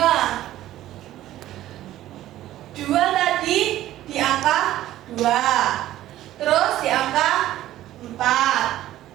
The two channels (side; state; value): left; quieter; 14.0 dB